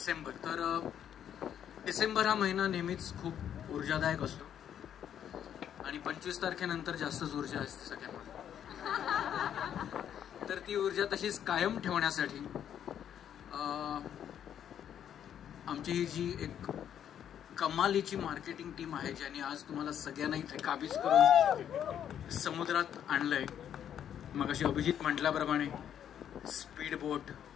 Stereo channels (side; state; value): right; quieter; 9.6 dB